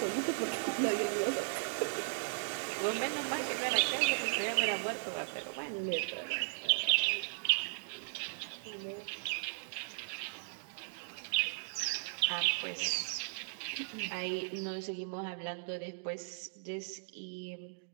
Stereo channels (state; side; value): silent; left; digital silence